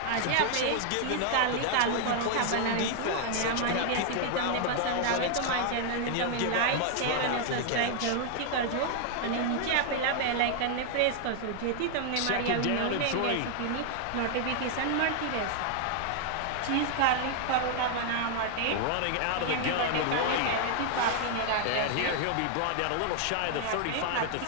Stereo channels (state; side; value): different; both; correlation 0.00